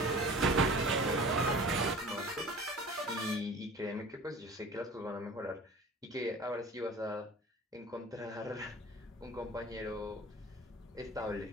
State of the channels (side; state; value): both; normal; correlation 0.42